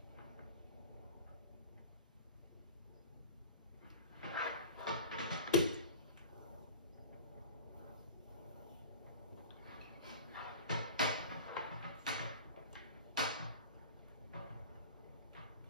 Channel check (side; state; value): both; inverted; correlation -0.36